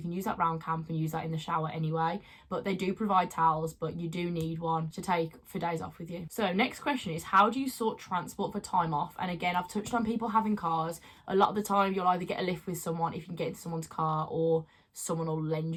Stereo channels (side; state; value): both; identical; correlation 1.00